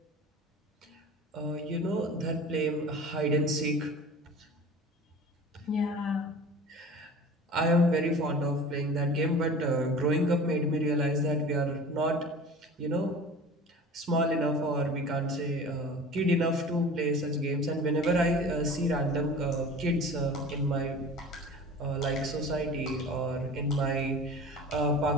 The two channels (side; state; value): both; normal; correlation 0.39